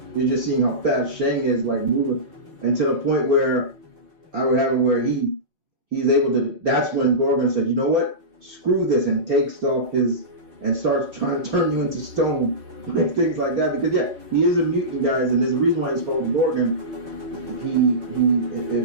you're just seeing how fast Shang is, like moving, and to the point where I would have it where he's able to. That's when Gorgon said, "You know what? Screw this," and takes off and starts trying to turn you into stone, like things like that. Because he is a mutant, guys, and there's a reason why he's called Gorgon.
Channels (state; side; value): late; left; 4.4 ms